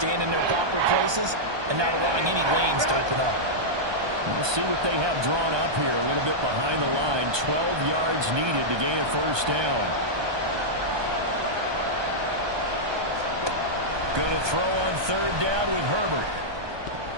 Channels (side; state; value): left; late; 1.2 ms